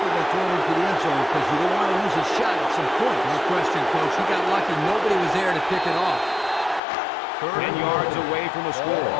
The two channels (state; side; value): drops out; right; at 6.8 s